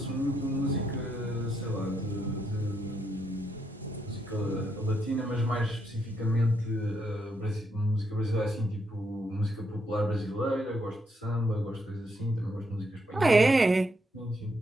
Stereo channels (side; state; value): both; normal; correlation 0.78